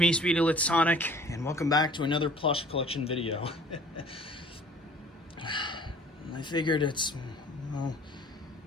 Speedy Lit Sonic, and welcome back to another plush collection video. I figured well,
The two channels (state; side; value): normal; both; correlation 0.50